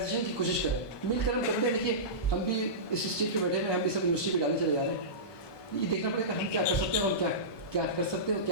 کی کوشش کریں، مل کر ہم کرتے ہیں. دیکھیے ہم بھی اس اسٹیج پہ بیٹھے ہوئے، ہم بھی سب یونیورسٹی پہ ڈالے چلے جا رہے ہیں. یہ دیکھنا پڑے گا ہم کیا کر سکتے ہیں، اور ہم کیا کر سکتے ہیں اور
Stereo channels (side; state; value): right; late; 1.2 ms